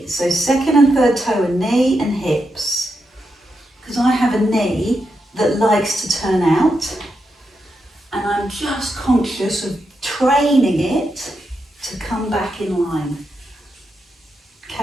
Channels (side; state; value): both; normal; correlation 0.85